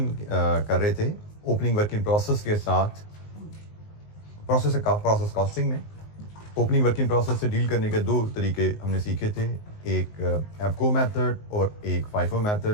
कर रहे थे ओपनिंग वर्क इन प्रोसेस के साथ प्रोसेस कॉस्टिंग में। ओपनिंग वर्क इन प्रोसेस से डील करने के दो तरीके हमने सीखे थे, एक एफको मेथड और एक फाइफो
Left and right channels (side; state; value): right; late; 19 ms